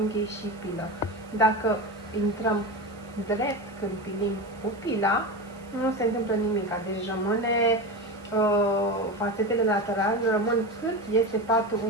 și pilă. Dacă intrăm drept când pilim cu pila, nu se întâmplă nimic, deci rămâne fațetele laterale rămân cât este patul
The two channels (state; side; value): noise; right; hiss, 27 dB below the sound